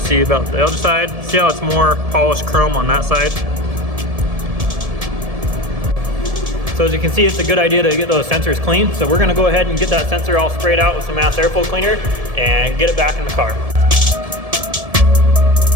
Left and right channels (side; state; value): left; late; 1.7 ms